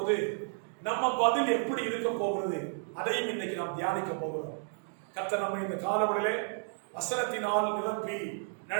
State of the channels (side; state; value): left; silent; digital silence